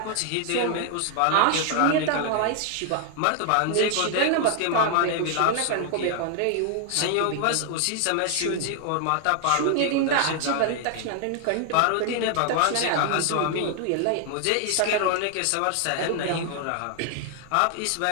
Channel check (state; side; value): different; both; correlation 0.00